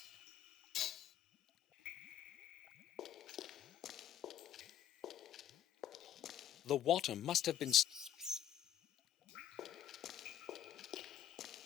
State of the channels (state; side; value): quieter; right; 10.8 dB